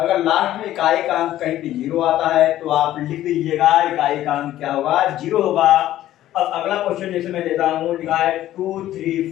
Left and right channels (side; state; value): right; quieter; 13.5 dB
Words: लास्ट में इकाई का अंक कहीं पे जीरो आता है तो आप लिख दीजिएगा इकाई का अंक क्या होगा, जीरो होगा। अब अगला क्वेश्चन जैसे मैं देता हूँ, लिखा है